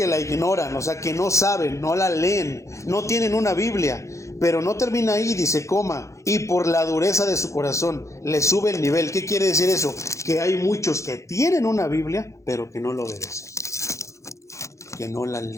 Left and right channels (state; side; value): late; right; 0.15 ms